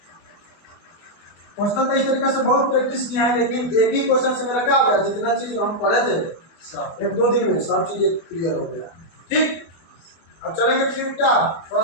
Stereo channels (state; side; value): late; right; 24 ms